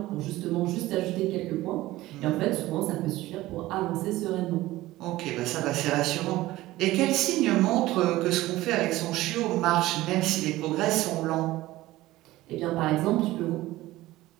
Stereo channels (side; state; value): left; quieter; 17.2 dB